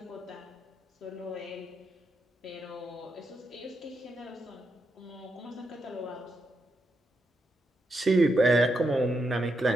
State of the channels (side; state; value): both; normal; correlation 0.82